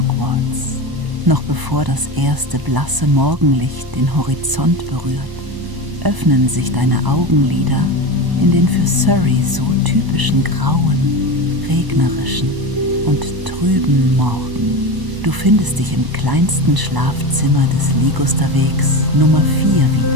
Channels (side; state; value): left; late; 1.0 ms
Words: Noch bevor das erste blasse Morgenlicht den Horizont berührt, öffnen sich deine Augenlider in den für Surrey so typischen grauen, regnerischen und trüben Morgen. Du findest dich im kleinsten Schlafzimmer des Ligusterwegs Nummer 4